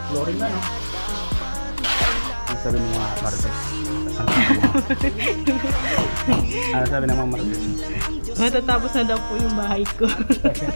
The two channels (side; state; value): both; inverted; correlation -1.00